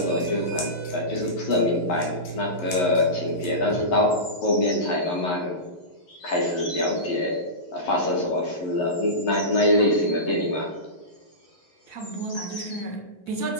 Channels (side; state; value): right; late; 11 ms